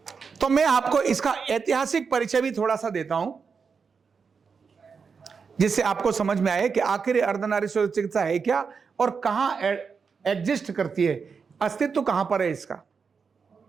तो मैं आपको इसका ऐतिहासिक परिचय भी थोड़ा सा देता हूं, जिससे आपको समझ में आए कि आखिर अर्धनारीश्वर चिकित्सा है क्या और कहां एग्जिस्ट करती है, अस्तित्व कहां पर है इसका।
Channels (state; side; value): quieter; left; 5.6 dB